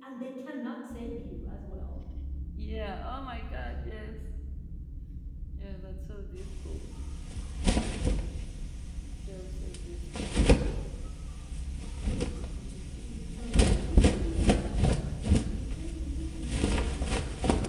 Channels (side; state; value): both; identical; correlation 1.00